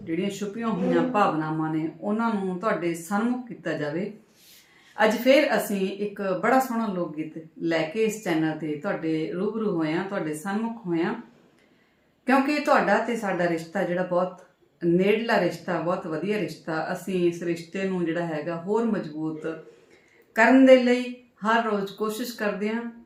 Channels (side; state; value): both; identical; correlation 1.00